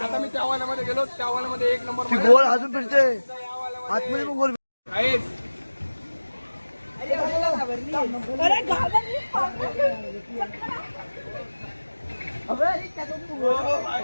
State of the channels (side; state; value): both; inverted; correlation -1.00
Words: आता मी त्या वाल्यामध्ये गेलो. त्या वाल्यामध्ये एक नंबर गोल अजून फिरते आतमध्ये पण गोल.